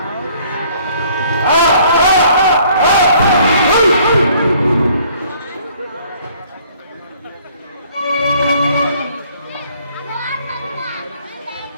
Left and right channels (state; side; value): inverted; both; correlation -0.59